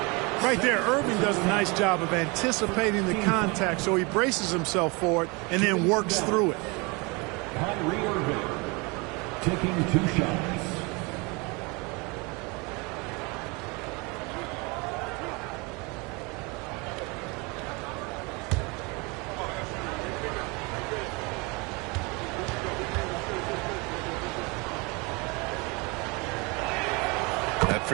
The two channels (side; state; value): left; quieter; 28.0 dB